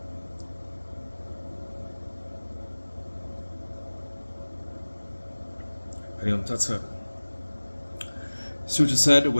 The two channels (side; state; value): both; inverted; correlation -1.00